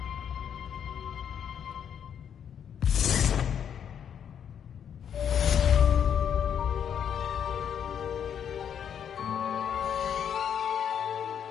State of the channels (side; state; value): right; quieter; 8.5 dB